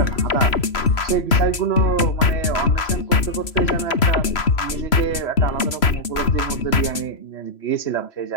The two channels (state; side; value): late; right; 3.0 ms